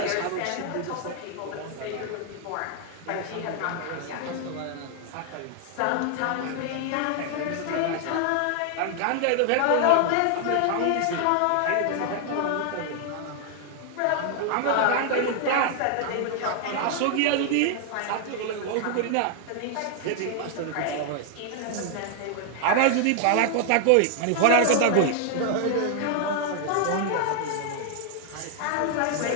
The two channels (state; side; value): different; both; correlation 0.00